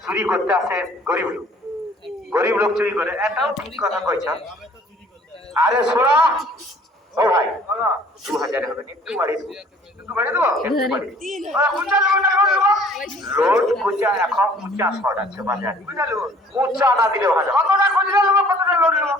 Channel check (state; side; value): normal; both; correlation 0.55